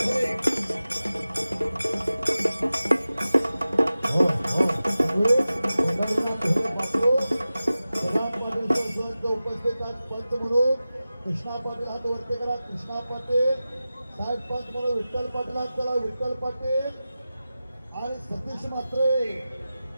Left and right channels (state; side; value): inverted; both; correlation -0.95